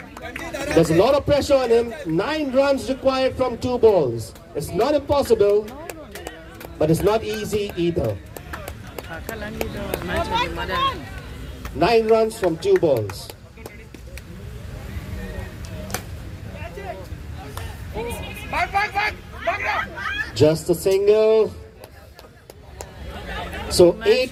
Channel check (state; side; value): identical; both; correlation 1.00